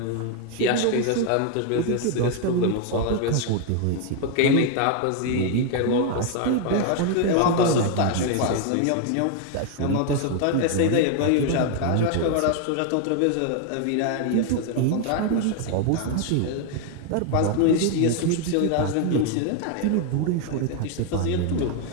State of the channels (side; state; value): both; different; correlation 0.01